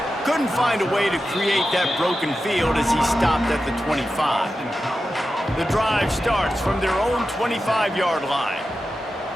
Couldn't find a way to create that broken field as he stopped at the 25. The drive starts from their own 25-yard line.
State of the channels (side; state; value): both; normal; correlation 0.91